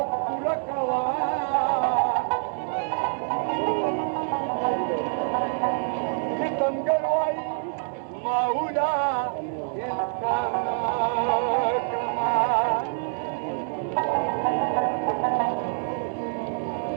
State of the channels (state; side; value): silent; left; 61 dB below the other